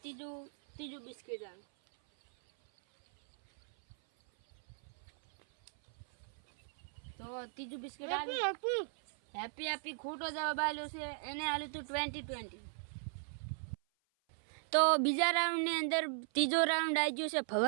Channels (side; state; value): left; silent; 53 dB below the other